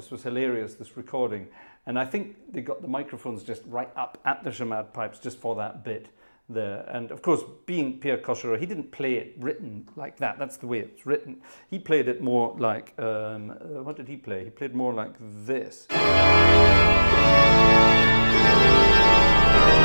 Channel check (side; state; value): both; inverted; correlation -1.00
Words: was hilarious, this recording. And I think they got the microphones just right up at the chamade pipes just for that bit there. And of course, being Pierre Cochereau, he didn't play it written like that. That's the way it's written. He played it more like, what did he play? He played more like this. He